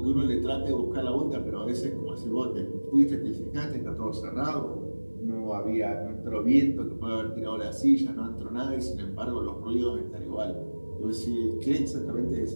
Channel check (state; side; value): inverted; both; correlation -1.00